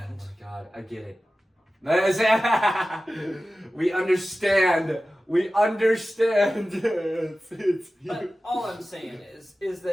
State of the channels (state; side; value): normal; both; correlation 0.95